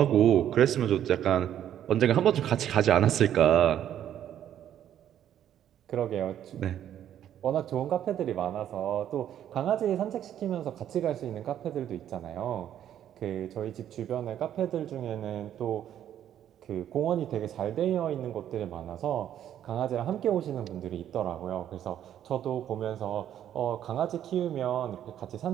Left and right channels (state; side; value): quieter; left; 10.6 dB